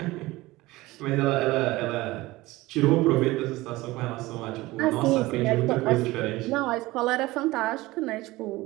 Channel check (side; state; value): left; quieter; 19.5 dB